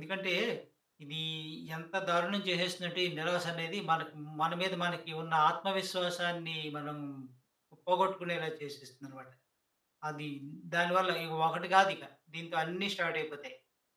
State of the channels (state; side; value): identical; both; correlation 1.00